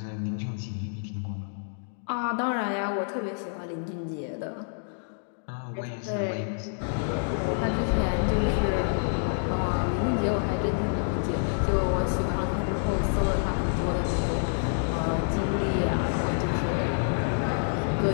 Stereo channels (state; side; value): silent; right; digital silence